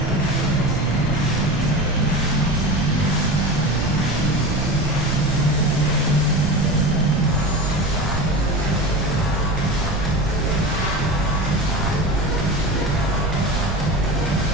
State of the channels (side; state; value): right; noise; rumble, 5 dB below the sound